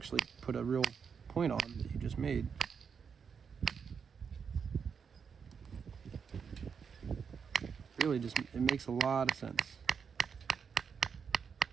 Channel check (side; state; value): left; quieter; 6.4 dB